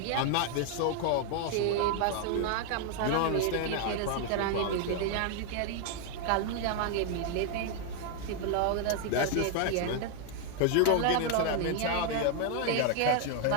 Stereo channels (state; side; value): different; both; correlation 0.00